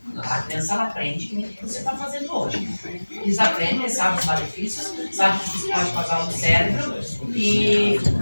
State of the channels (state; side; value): inverted; both; correlation -1.00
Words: A criança ela aprende o que você está fazendo hoje. Eles aprendem, sabem os malefícios, sabem o que isso pode causar no cérebro e